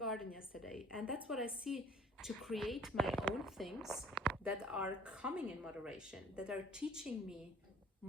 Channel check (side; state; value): both; normal; correlation 0.52